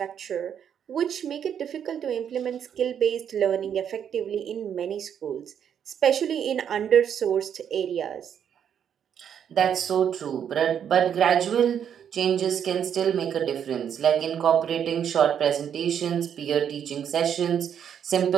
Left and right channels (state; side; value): quieter; left; 8.6 dB